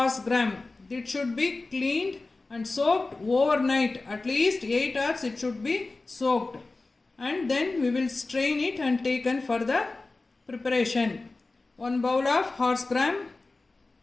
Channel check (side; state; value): right; quieter; 3.4 dB